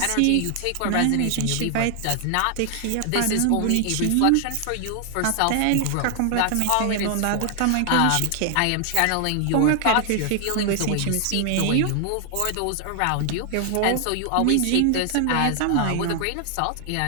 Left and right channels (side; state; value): both; different; correlation 0.00